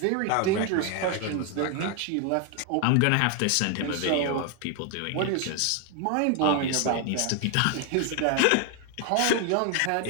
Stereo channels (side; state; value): both; different; correlation 0.01